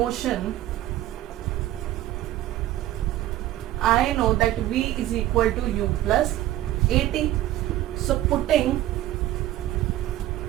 I know that v is equal to u plus at. So putting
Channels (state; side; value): quieter; left; 14.3 dB